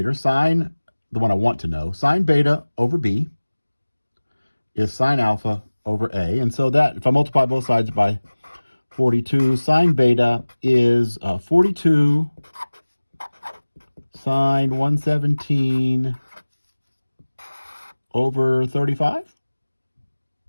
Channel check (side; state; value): both; inverted; correlation -1.00